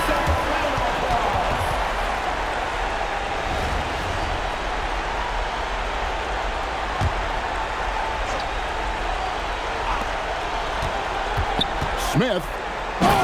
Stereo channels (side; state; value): both; identical; correlation 1.00